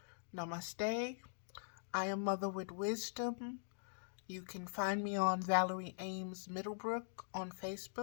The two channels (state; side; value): silent; right; digital silence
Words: Namaste. I am Mother with Wisdom. You can find me on Valerie Ames Middlebrook on